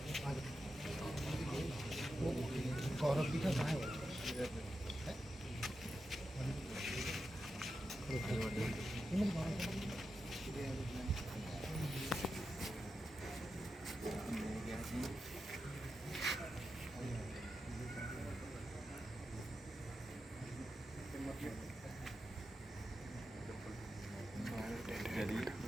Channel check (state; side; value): normal; both; correlation 0.89